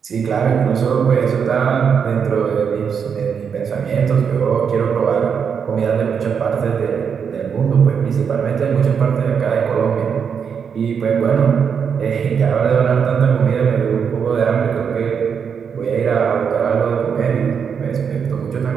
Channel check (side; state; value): left; quieter; 6.9 dB